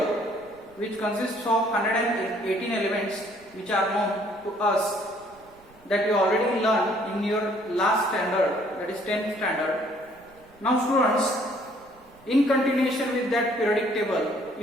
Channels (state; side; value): noise; right; rumble, 29 dB below the sound